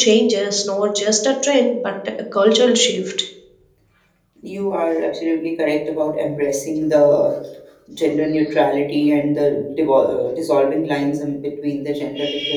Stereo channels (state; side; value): identical; both; correlation 1.00